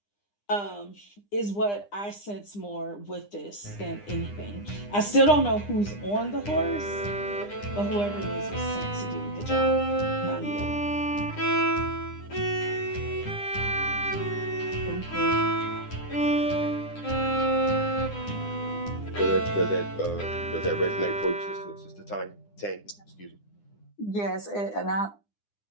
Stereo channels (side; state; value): right; late; 9.9 ms